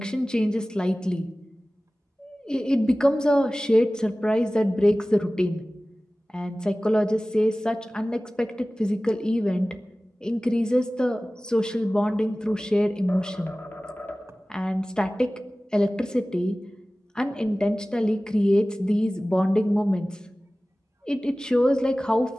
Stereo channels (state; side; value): normal; both; correlation 0.97